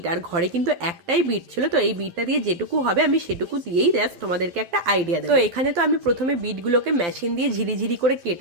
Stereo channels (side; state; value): left; late; 12 ms